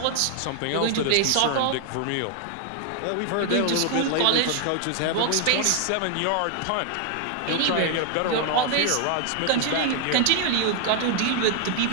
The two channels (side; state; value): both; different; correlation 0.00